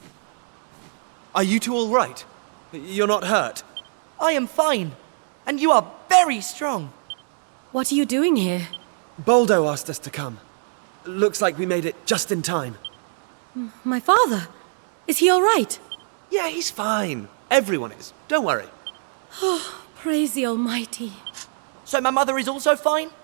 Are you two all right? You're not hurt? I am fine, and you are very strong. What are you doing here? Boldo asked us to come. Looks like we made it just in time. My father? Is he all right? Yeah, he's fine. Everyone is. Don't worry. Praise the Almighty. So my mother is also fine?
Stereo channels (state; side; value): silent; left; digital silence